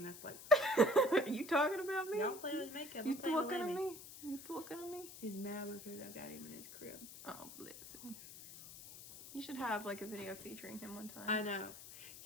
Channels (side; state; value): left; noise; hiss, 14 dB below the sound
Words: at us like. Are you talking about me? Y'all playing with makeup. You looking at me? You looking at me? He's mad because I got him in his crib. Oh, bless him. You should have like a video featuring him one time. I know.